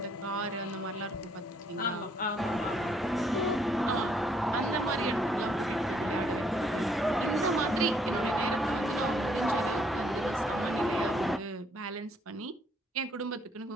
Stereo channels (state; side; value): normal; both; correlation 0.68